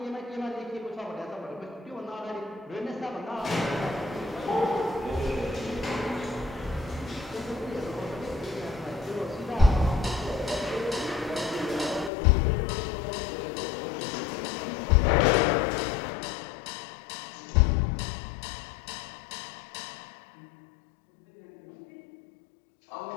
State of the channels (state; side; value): drops out; right; at 12.1 s